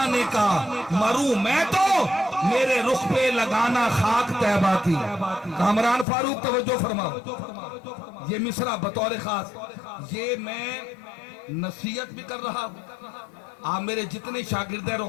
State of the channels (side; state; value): right; drops out; at 6.1 s